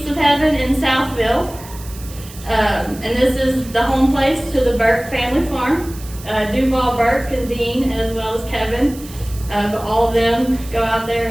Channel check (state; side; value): noise; right; hiss, 18 dB below the sound